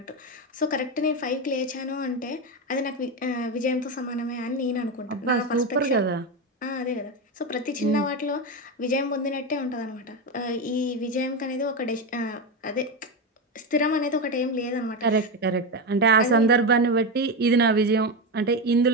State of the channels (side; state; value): both; normal; correlation 0.14